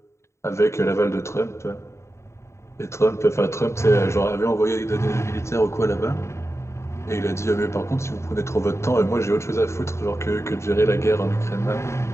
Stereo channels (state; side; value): late; right; 0.14 ms